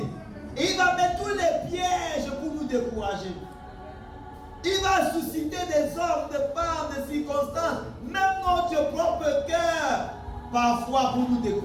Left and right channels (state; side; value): identical; both; correlation 1.00